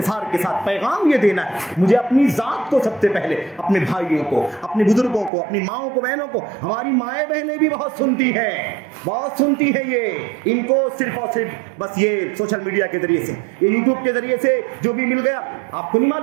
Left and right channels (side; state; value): left; drops out; at 5.3 s